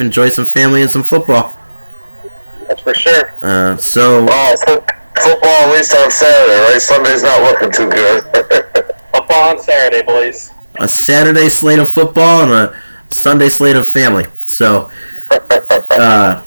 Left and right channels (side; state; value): both; inverted; correlation -1.00